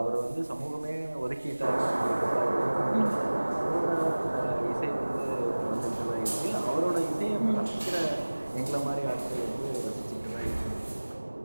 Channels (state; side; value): inverted; both; correlation -1.00